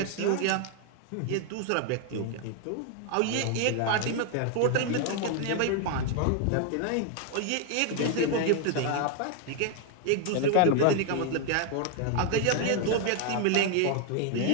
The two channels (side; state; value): both; different; correlation 0.00